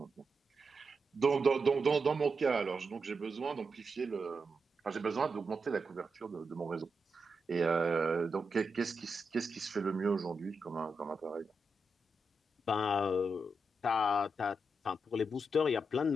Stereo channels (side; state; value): both; normal; correlation 0.86